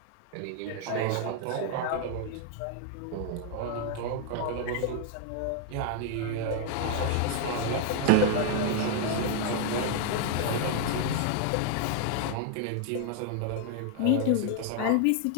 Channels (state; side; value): different; both; correlation 0.00